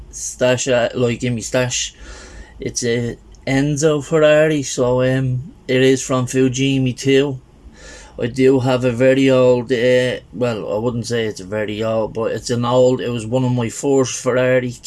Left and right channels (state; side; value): identical; both; correlation 1.00